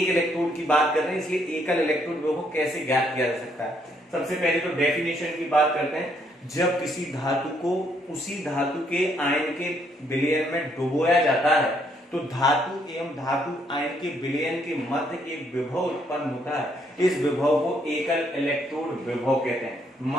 इलेक्ट्रोड की बात कर रहे हैं, इसलिए एकल इलेक्ट्रोड विभव कैसे ज्ञात किया जा सकता है। सबसे पहले तो डेफिनेशन की बात करते हैं। जब किसी धातु को उसी धातु के आयन के विलयन में डुबोया जाता है तो धातु एवं धातु आयन के विलयन के मध्य एक विभव उत्पन्न होता है। इस विभव को एकल इलेक्ट्रोड विभव कहते हैं।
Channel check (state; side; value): normal; both; correlation 0.71